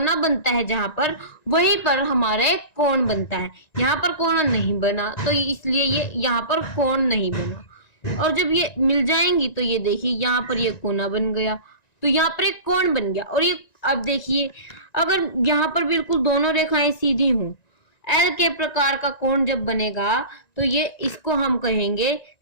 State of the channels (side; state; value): right; late; 1.9 ms